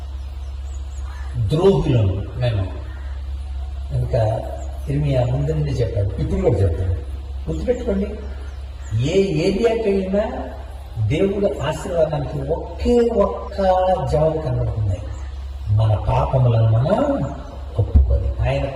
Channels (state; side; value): identical; both; correlation 1.00